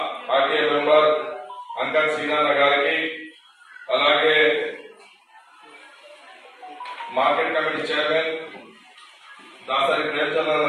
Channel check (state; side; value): identical; both; correlation 1.00